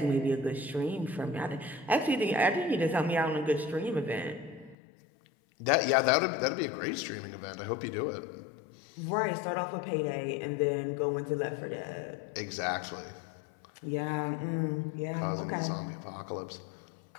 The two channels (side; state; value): right; drops out; at 4.8 s